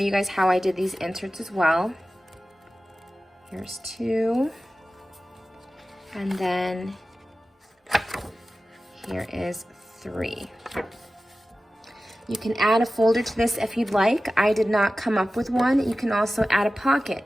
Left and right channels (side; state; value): both; normal; correlation 0.95